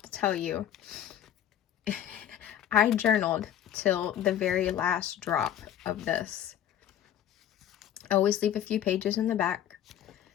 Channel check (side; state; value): right; quieter; 10.7 dB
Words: to tell you, I journaled till the very last drop of this. I always leave a few pages in the back.